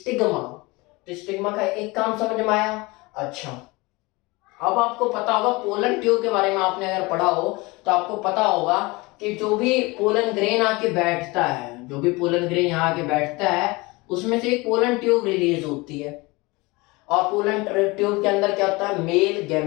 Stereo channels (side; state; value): right; quieter; 23.9 dB